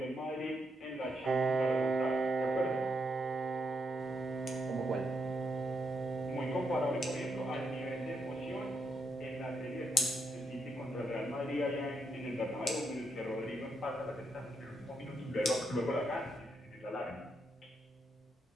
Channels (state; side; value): normal; both; correlation 0.80